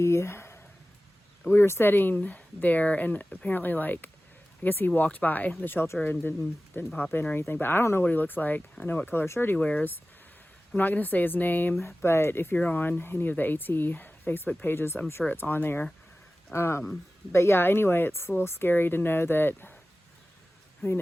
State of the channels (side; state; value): both; normal; correlation 0.96